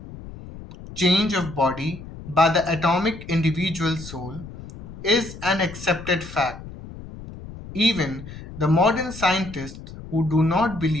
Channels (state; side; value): noise; left; rumble, 14 dB below the sound